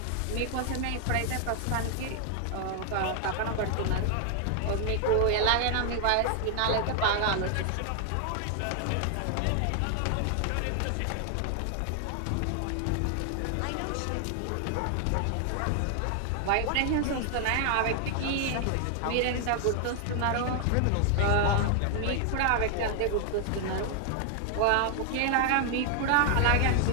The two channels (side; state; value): both; different; correlation 0.00